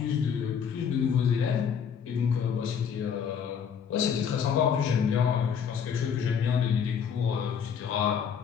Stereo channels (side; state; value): right; quieter; 7.3 dB